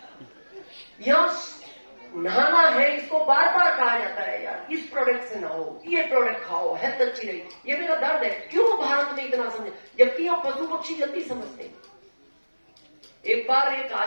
यहां नहाना है, इसको बार बार कहा जाता है यार इस प्रोडक्ट से नहाओ, ये प्रोडक्ट खाओ, हेल्थ अच्छी रही। ये मेरा दर्द है, क्यों भारत में इतना समझे, जबकि यहाँ पशु पक्षी जल्दी समझते हैं। एक बार एक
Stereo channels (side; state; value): both; inverted; correlation -1.00